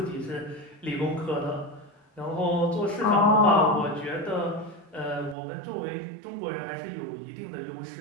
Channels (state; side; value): drops out; left; at 5.4 s